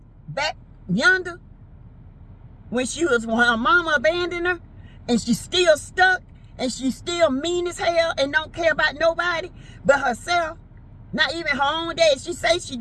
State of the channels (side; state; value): both; identical; correlation 1.00